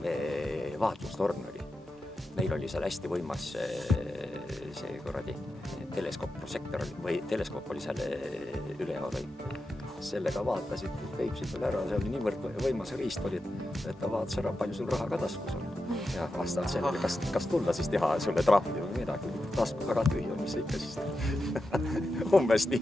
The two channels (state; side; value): normal; both; correlation 0.90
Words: vaatlustorn oli. Neil oli seal hästi võimas see korradi teleskoopprosektor või teleskoop oli seal üleval. Sellega vaatasid Peipsid veel ära, see oli niivõrd võimas riist oli, et ta vaatas ära, palju sul raha ka taskus on. Ja vastavalt sellele, kas tulla siis teha sulle trahvi või midagi, tasku väga tühi on, mis ikka siis umbes